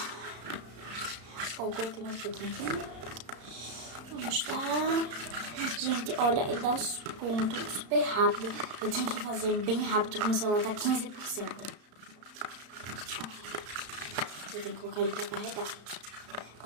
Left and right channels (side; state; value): left; late; 34 ms